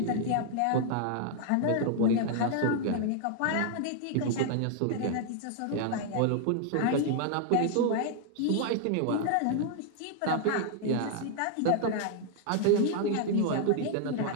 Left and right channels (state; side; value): different; both; correlation 0.00